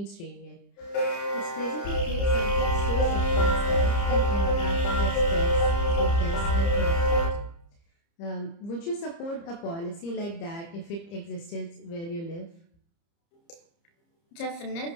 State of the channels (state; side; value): late; right; 30 ms